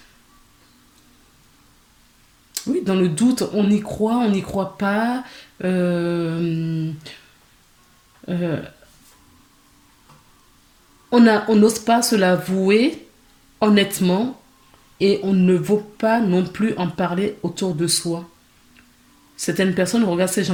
oui, dans le doute. On n'y croit pas. Euh, euh, on n'ose pas se l'avouer honnêtement et on ne veut pas non plus en parler autour de soi. Certaines personnes regardent ces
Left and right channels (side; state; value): both; identical; correlation 1.00